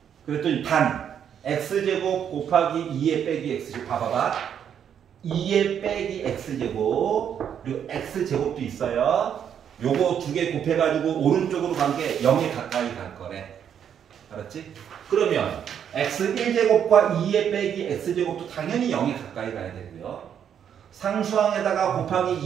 그랬더니 반 x제곱 곱하기 2의 빼기 x제곱 봐봐봐. 2의 빼기 x제곱 그리고 x제곱도 있어요. 요거 두 개 곱해가지고 오른쪽으로 간 게 0에 가까이 갈 거래. 알았지? 그러면 x1제곱과 2의 빼기 x제곱도 당연히 0에 가까이 가야 되고요. 상수항에다가 곱하기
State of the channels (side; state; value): left; quieter; 8.6 dB